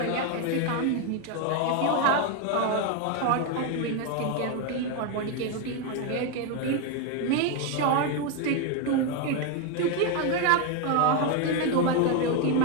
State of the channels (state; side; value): different; both; correlation 0.01